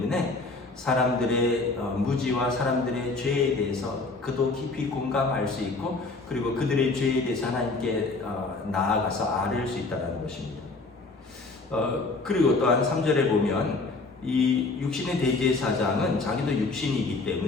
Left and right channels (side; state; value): right; quieter; 3.6 dB